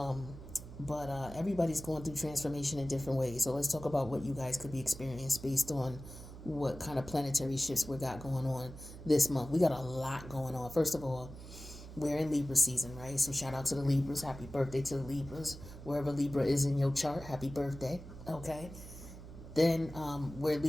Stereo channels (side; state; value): right; noise; hum, 14 dB below the sound